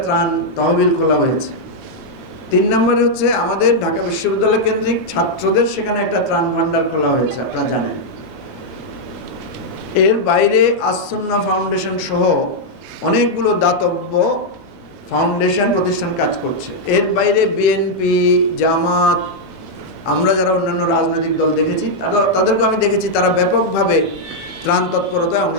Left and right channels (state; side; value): normal; both; correlation -0.03